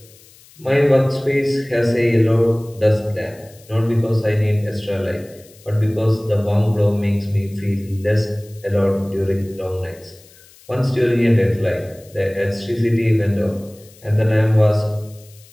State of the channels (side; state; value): left; noise; hiss, 25 dB below the sound